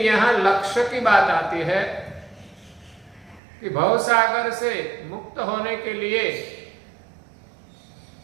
यहाँ लक्ष्य की बात आती है कि भवसागर से मुक्त होने के लिए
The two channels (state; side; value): drops out; left; at 3.4 s